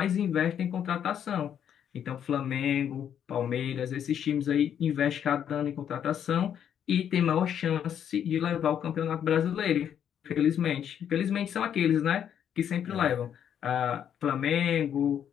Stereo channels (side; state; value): right; quieter; 9.1 dB